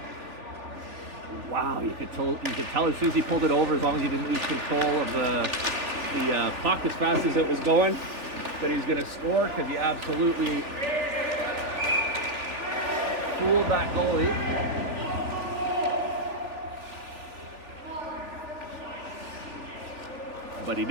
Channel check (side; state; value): left; late; 3.6 ms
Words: Wow, you could tell as soon as he pulled it over, as long as he didn't lose control of the puck as fast as it was going, that he's going to score, because he absolutely fooled that goalie. But he